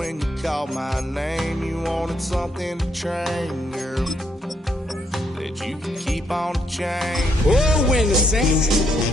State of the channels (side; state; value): both; normal; correlation 0.75